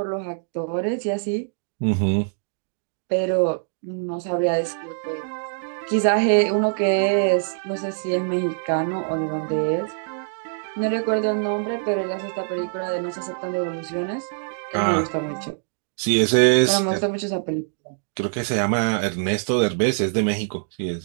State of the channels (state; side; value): silent; left; digital silence